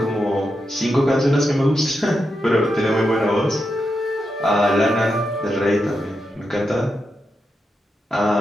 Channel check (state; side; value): normal; both; correlation 0.86